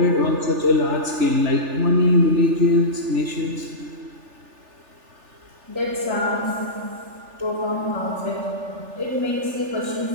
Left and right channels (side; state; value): left; late; 3.4 ms